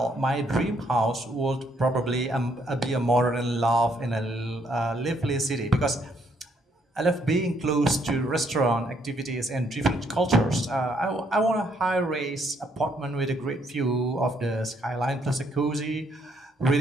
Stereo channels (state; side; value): normal; both; correlation 0.71